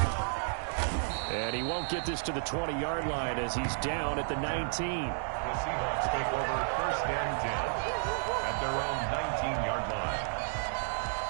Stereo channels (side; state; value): left; silent; 56 dB below the other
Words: And he won't get this to the 20-yard line as he's down at the 19. The Seahawks take over first and 10 at their own 19-yard line.